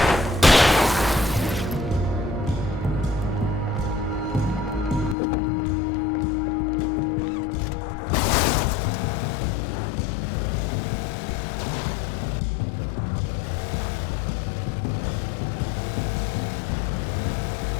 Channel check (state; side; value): drops out; right; at 5.2 s